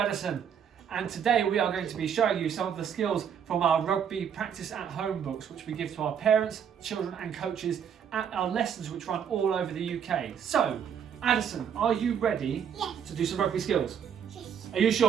And today we are going to be showing you some of the skills from our rugby practice at home books, which we give to our parents, children and coaches at our lessons which run all over the UK. So, Addison, are you ready to do some rugby skills? Yes. Are you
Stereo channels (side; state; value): left; quieter; 8.0 dB